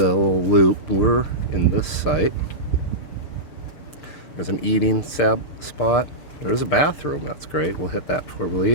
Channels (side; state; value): right; late; 6.6 ms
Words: little loop. We're in this site. There's an eating spot. There's a bathroom. That's great. We'll hit that before we